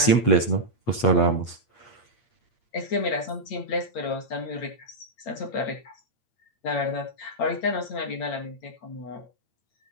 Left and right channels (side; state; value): right; late; 8.5 ms